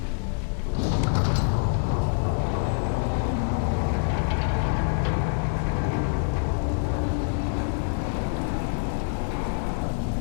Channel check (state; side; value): silent; right; 61 dB below the other